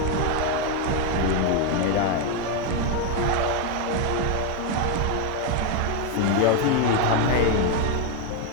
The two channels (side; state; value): both; different; correlation 0.02